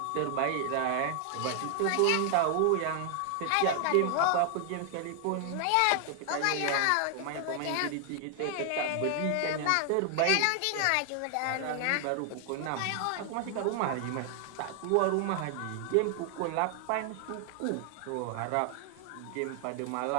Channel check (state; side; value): different; both; correlation 0.00